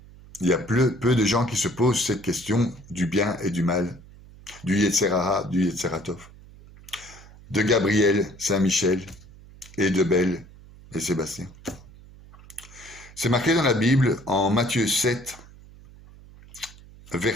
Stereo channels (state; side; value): noise; right; hum, 21 dB below the sound